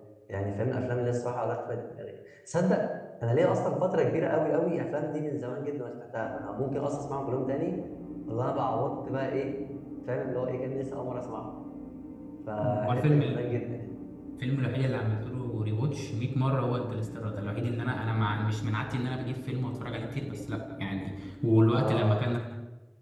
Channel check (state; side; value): identical; both; correlation 1.00